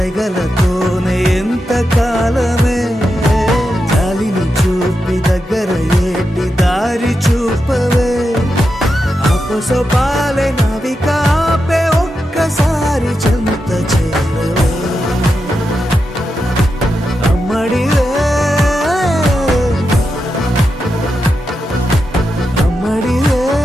ఎంత కాలమే జాలిని చూపి దగ్గర ఏటి దారి చూపవే అపసొపాలే నవికాపే ఒక్కసారి చెంత చేరవే అమ్మడివే అమ్మడివే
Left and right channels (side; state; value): both; normal; correlation 0.88